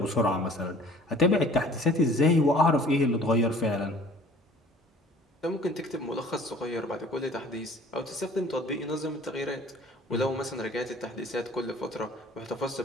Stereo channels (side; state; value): both; normal; correlation 0.51